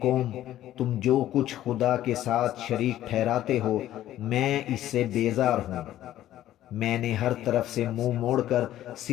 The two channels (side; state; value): right; quieter; 13.2 dB